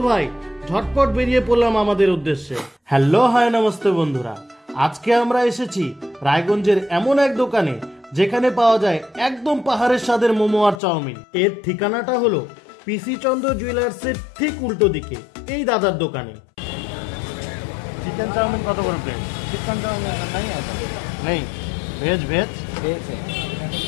ভাই ঝটপট বেরিয়ে পড়লাম আমাদের উদ্দেশ্যে। হ্যালো, হাই, নমস্তে বন্ধুরা। আজকে আমরা এসেছি রায়গঞ্জের এমন এক দোকানে যেখানে পাওয়া যায় একদম পাহাড়ের স্বাদের মোমো আর চাউমিন। এর ঠিকানাটা হলো পিসি চন্দ্র জুয়েলার্সের ঠিক উল্টো দিকে এই দাদার দোকানে। চিকেন चाउमीन কত করে প্লেट? चिकन चाउमीन नहीं है तो नहीं, वेज वेज वेज है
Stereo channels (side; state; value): right; drops out; at 10.8 s